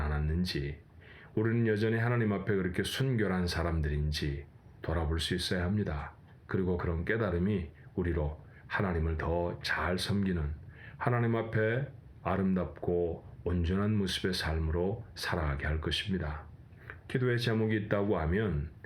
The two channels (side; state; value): both; identical; correlation 1.00